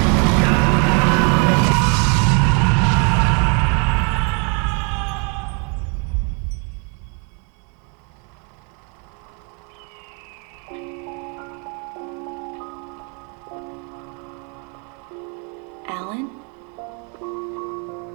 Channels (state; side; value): quieter; left; 35.9 dB